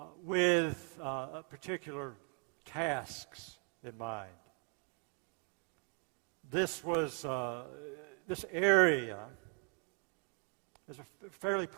with particular tasks in mind. This area is a fairly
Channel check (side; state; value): left; quieter; 29.6 dB